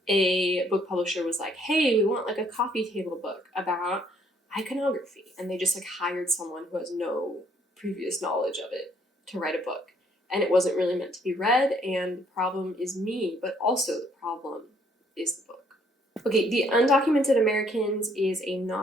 a book publisher was like, hey, we want like a coffee table book about iconography. And they just like hired someone who has no previous knowledge of it to write a book. And it wasn't really meant to be read, and the problem is me, but also the problem is the book. Okay, The Undocumented Americans is a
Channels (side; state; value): both; normal; correlation 0.66